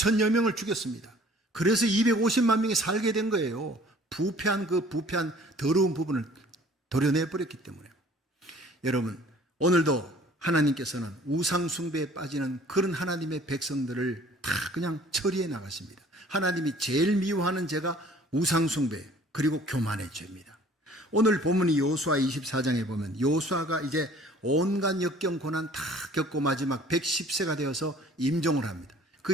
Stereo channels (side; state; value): both; normal; correlation 0.52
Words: 명을 죽였습니다. 그래서 250만 명이 살게 된 거예요. 부패한 더러운 부분을 도려내버렸기 때문에. 여러분, 오늘도 하나님께서는 우상 숭배에 빠지는 그런 하나님의 백성들을 다 그냥 처리해 나가십니다. 하나님이 제일 미워하는 죄가 우상 숭배 그리고 교만의 죄입니다. 오늘 본문이 여호수아 24장에 보면 여호수아가 이제 온갖 역경 고난 다 겪고 마지막 110세가 되어서 임종을 합니다.